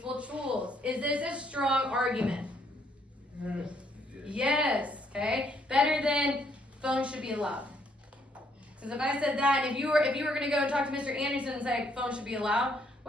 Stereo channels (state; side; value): normal; both; correlation 0.70